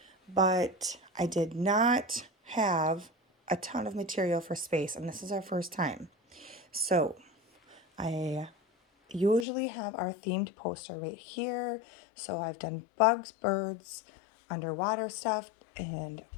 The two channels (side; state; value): right; drops out; at 9.5 s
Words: but I did not have a ton of material for space, and this is our first time. So I usually have our themed poster right here. So I've done bugs, birds, underwater stuff, and